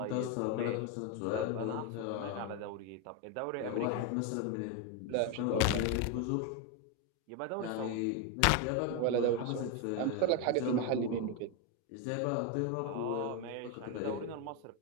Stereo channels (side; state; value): both; different; correlation 0.02